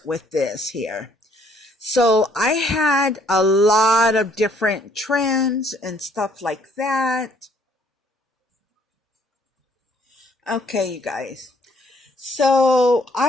with this here. So I had a lot of different trims and stuff like that. Okay, you guys. So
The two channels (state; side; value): normal; both; correlation 0.64